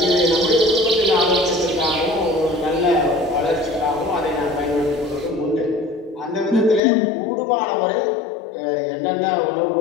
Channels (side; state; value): right; drops out; at 6.8 s